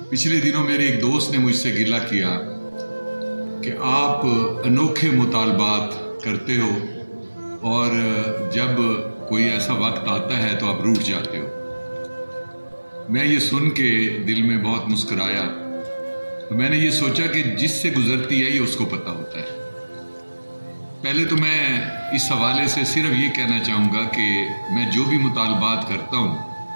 पिछले दिनों मेरे एक दोस्त ने मुझसे गिला किया कि आप अनोखे मुतालबात करते हो और जब कोई ऐसा वक्त आता है तो आप रूठ जाते हो। मैं ये सुन के दिल में बहुत मुस्कुराया। तो मैंने ये सोचा कि जिससे गुजरती है ये उसको पता होता है। पहले तो मैं इस हवाले से सिर्फ ये कहना चाहूँगा कि मैं जो भी मुतालबात करता हूँ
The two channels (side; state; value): both; inverted; correlation -1.00